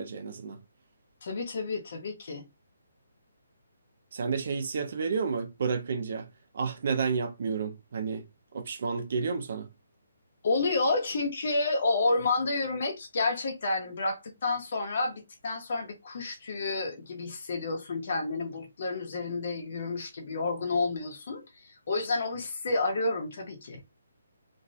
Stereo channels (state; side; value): inverted; both; correlation -0.72